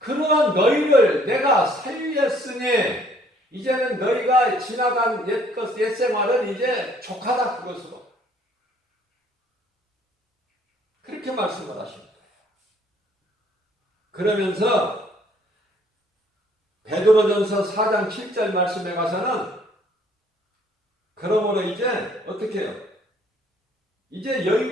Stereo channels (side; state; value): both; normal; correlation 0.61